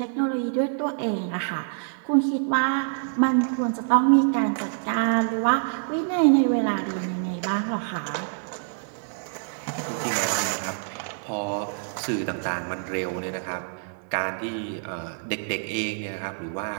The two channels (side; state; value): left; silent; digital silence